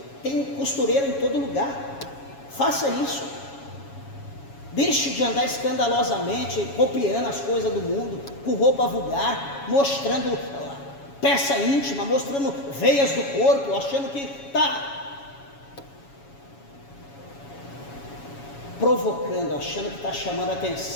Tem costureira em todo lugar. Faça isso. Deixe de andar escandalosamente copiando as coisas do mundo, com roupa vulgar, mostrando peça íntima, mostrando veias do corpo, achando que está provocando, achando que está chamando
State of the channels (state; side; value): late; right; 7.2 ms